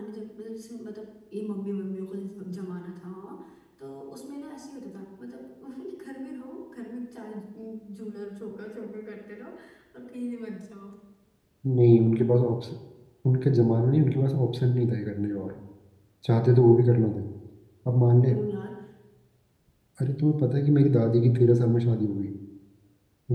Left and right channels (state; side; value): identical; both; correlation 1.00